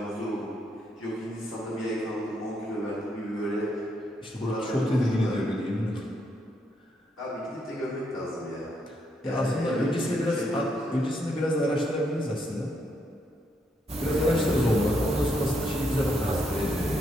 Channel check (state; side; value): normal; both; correlation 0.77